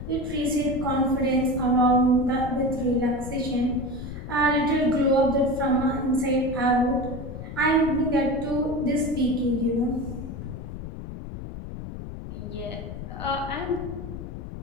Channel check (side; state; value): left; noise; rumble, 9 dB below the sound